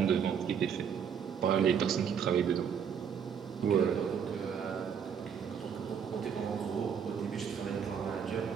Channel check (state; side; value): quieter; left; 7.5 dB